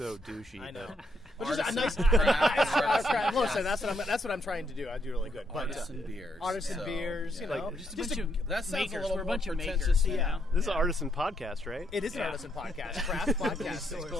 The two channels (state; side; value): normal; both; correlation 0.75